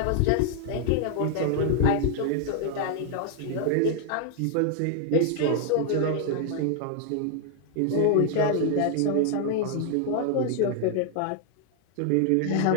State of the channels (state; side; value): different; both; correlation 0.00